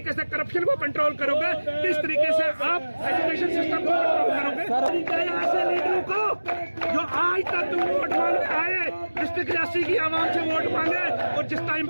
से करप्शन को कंट्रोल करोगे, किस तरीके से आप एजुकेशन सिस्टम को कंट्रोल करोगे। ऐसे लीडरों को जो आज तक तुम वोट मांगने आए, डिस्ट्रिक्ट रियासी की आवाम से वोट मांगे, और जिस टाइम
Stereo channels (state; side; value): inverted; both; correlation -1.00